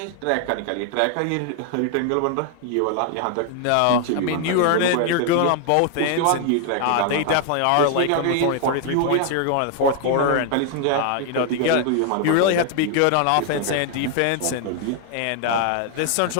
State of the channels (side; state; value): both; different; correlation 0.00